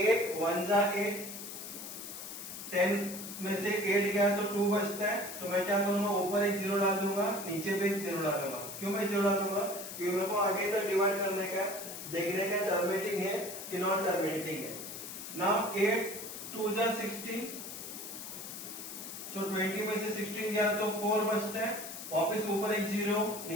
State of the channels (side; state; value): left; noise; hiss, 9 dB below the sound